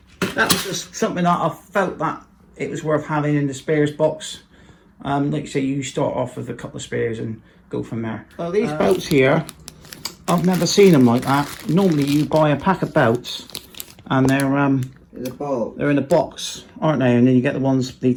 that was just something that I felt that it was worth having in the spares box. Like I say, you start off with a couple of spares and go from there. Well, these belts here, I've never seen them like that. Normally you buy a pack of belts and they're in a box, aren't they? And then you get the ones, the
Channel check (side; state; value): both; identical; correlation 1.00